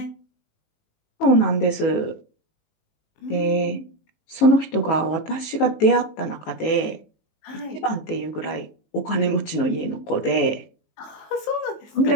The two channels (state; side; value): late; right; 19 ms